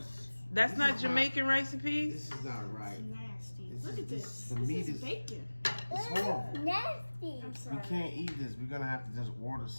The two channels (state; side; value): inverted; both; correlation -1.00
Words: That's This not is Jamaican recipes? This is not right. Nasty. Look at this. The meat is bacon. It's horrible. Nasty. I'm We sorry. can't eat this. We're gonna have to just order